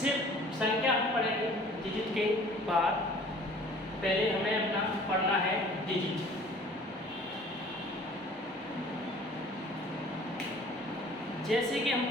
संख्या हम पढ़ेंगे डिजिट के बाद। पहले हमें अपना पढ़ना है डिजिट। जैसे कि हम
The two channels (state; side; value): normal; both; correlation 0.50